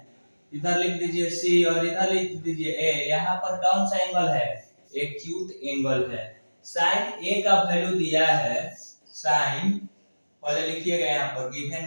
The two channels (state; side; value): inverted; both; correlation -1.00